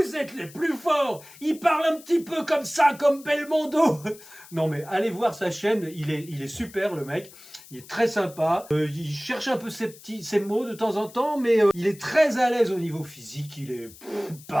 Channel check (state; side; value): noise; left; hiss, 20 dB below the sound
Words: êtes les plus forts. Il parle un petit peu comme ça, comme Belmondo. Non mais allez voir sa chaîne, il est super le mec. Il est très sympa. Il cherche un peu ses mots de temps en temps, mais il est très à l'aise au niveau physique. Il est